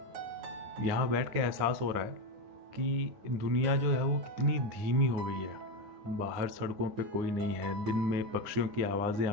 यहाँ बैठ के एहसास हो रहा है कि दुनिया जो है वो कितनी धीमी हो गई है। बाहर सड़कों पे कोई नहीं है, दिन में पक्षियों की आवाज़ें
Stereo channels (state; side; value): late; left; 9.8 ms